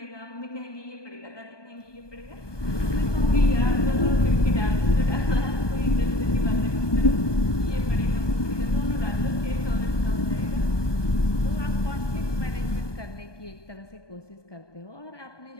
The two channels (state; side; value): late; right; 1.2 ms